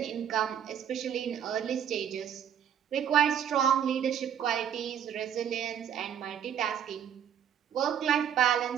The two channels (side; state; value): left; quieter; 9.1 dB